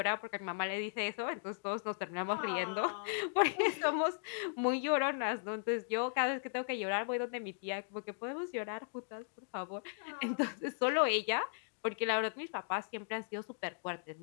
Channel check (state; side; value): silent; right; digital silence